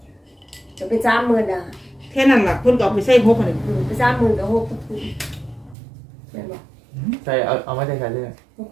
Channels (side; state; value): left; drops out; at 5.8 s